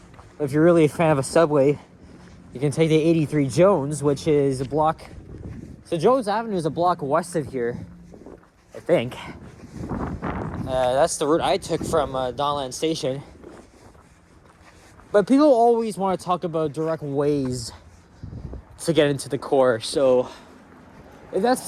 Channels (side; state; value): both; identical; correlation 1.00